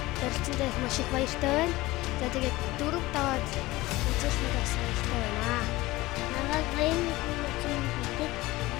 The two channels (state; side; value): quieter; right; 19.3 dB